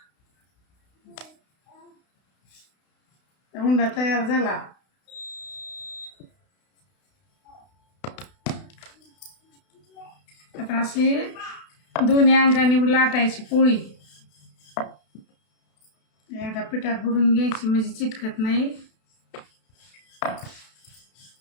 उंडा तयार झाला. आता अशी दोन्ही अंगाने लाटायची पोळी. एकदा पिठात बुडून घ्यायची म्हणजे चिटकत नाही.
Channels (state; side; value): late; right; 32 ms